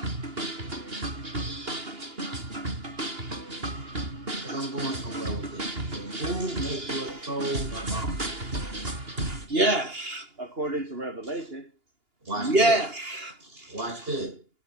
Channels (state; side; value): late; left; 2.8 ms